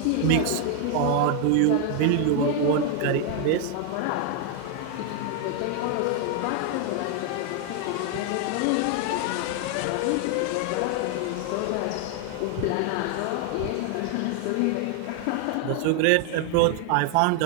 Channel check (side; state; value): both; different; correlation 0.00